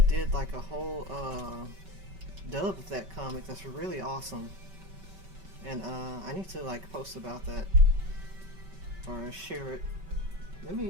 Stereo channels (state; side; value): late; left; 5.2 ms